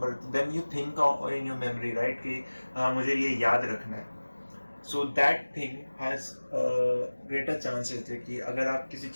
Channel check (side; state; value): both; inverted; correlation -1.00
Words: then you think in your memory, right, कि मुझे ये याद रखना है. So that thing has greater chances है कि अगर आप किसी